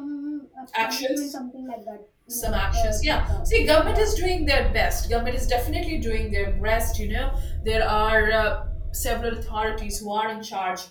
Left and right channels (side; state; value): both; identical; correlation 1.00